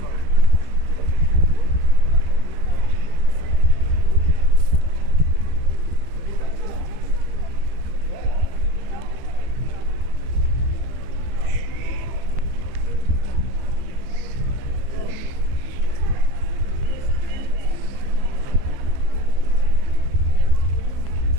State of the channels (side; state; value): left; late; 15 ms